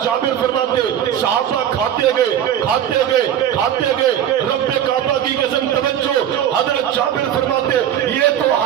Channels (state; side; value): quieter; left; 10.2 dB